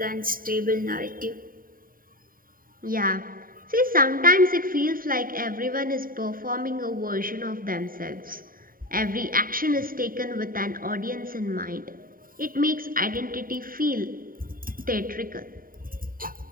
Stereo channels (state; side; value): late; left; 0.41 ms